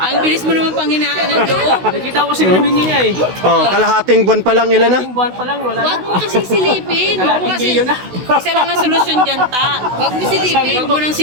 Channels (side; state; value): left; late; 16 ms